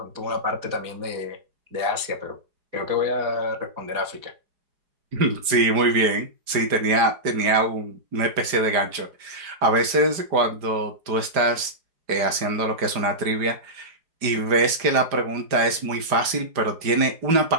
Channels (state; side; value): late; left; 5.0 ms